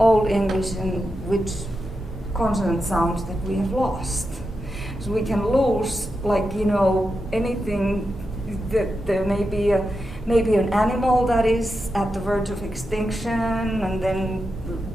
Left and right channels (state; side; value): normal; both; correlation 0.88